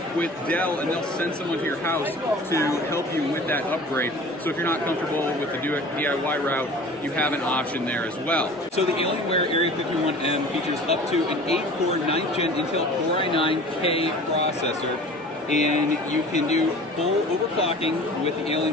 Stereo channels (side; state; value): both; normal; correlation 0.42